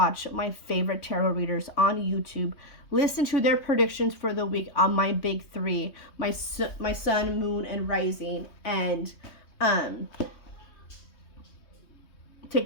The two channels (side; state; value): right; late; 3.2 ms